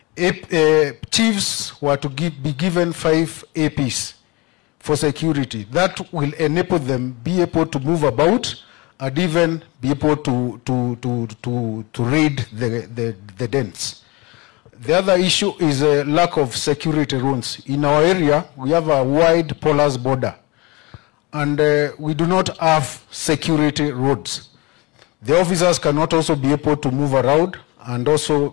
chiefs were to be given 5 APs for security. That will enable them be able to move about and even be able to raid the dens. The other issue is a lack of security rules. In our area, we have a wide porous border, and we do not have security roads. The officers cannot also be able to move around and also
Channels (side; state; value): right; quieter; 25.0 dB